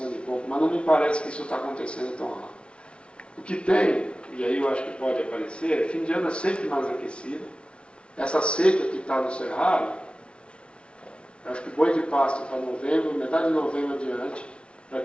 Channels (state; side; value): late; right; 0.058 ms